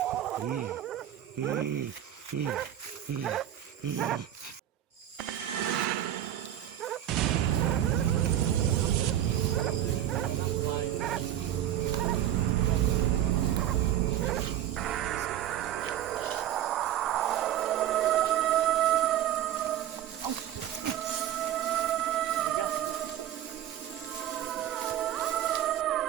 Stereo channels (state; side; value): quieter; left; 11.6 dB